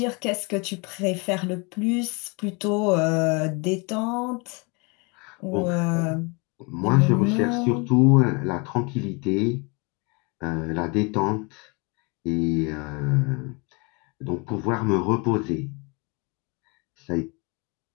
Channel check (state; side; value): quieter; right; 30.3 dB